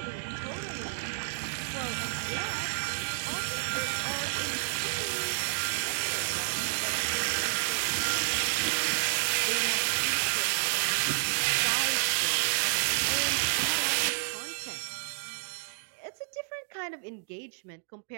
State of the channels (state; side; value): silent; left; digital silence